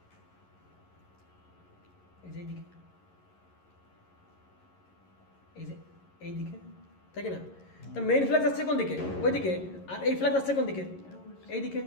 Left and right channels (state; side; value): late; right; 11 ms